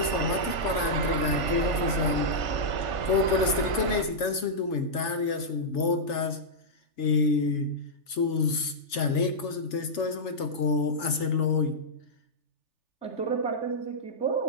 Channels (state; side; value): late; right; 3.4 ms